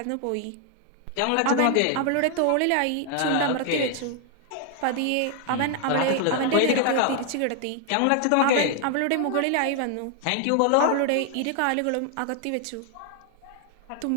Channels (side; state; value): both; different; correlation 0.00